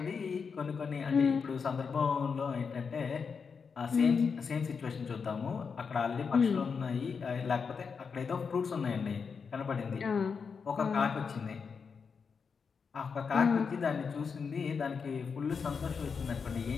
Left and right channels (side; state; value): right; quieter; 5.7 dB